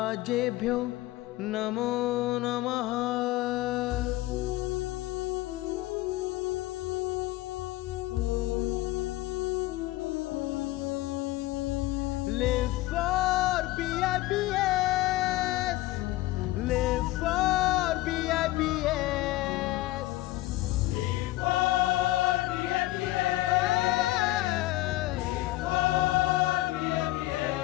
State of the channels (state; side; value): quieter; right; 17.6 dB